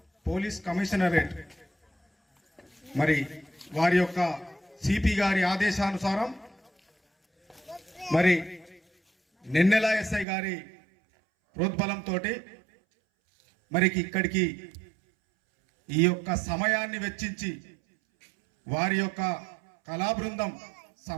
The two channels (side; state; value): left; drops out; at 10.2 s